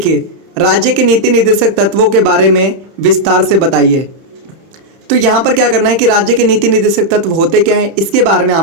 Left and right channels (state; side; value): late; left; 31 ms